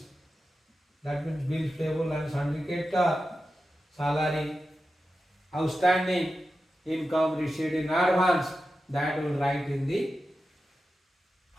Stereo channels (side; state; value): both; normal; correlation 0.92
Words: that means bills payable and sundry creditor, salary, outstanding, income received in advance, that will write in the